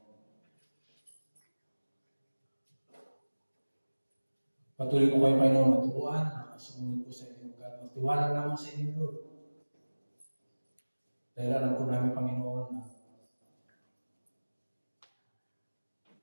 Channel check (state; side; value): inverted; both; correlation -1.00